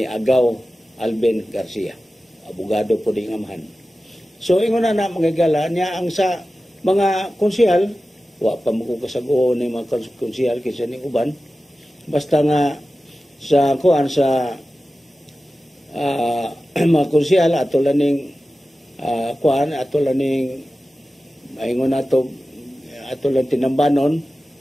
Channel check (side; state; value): both; normal; correlation 0.95